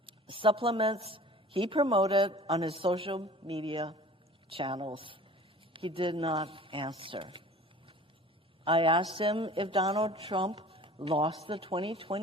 Supplements he promoted on his social media channels. He did not answer. I asked him if Donald Trump lost the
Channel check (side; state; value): both; normal; correlation 0.44